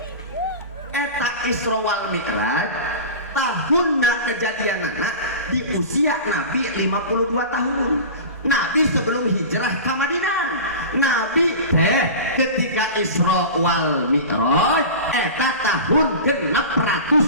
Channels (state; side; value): inverted; both; correlation -0.31